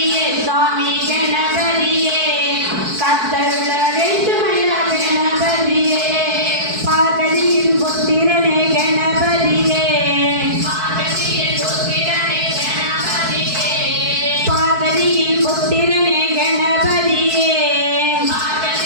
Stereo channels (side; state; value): left; late; 4.6 ms